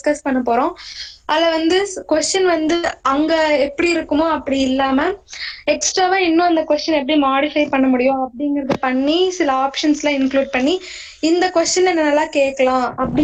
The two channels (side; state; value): both; identical; correlation 1.00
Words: பண்ண போறோம். அதுல வந்து கொஸ்டின் வந்து அங்க எப்படி இருக்குமோ அப்படி இல்லாம எக்ஸ்ட்ராவா இன்னும் அந்த கொஸ்டின் எப்படி மாடிஃபை பண்ண முடியும் அப்படிங்கறது பண்ணி சில ஆப்ஷன்ஸ்லாம் இன்க்ளூட் பண்ணி இந்த கொஸ்டின் நல்லா கேட்கலாம்